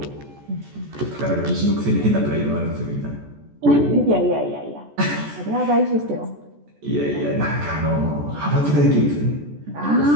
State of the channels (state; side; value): late; left; 14 ms